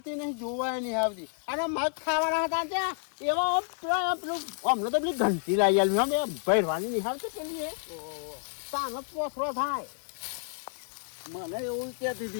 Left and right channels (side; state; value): right; silent; 58 dB below the other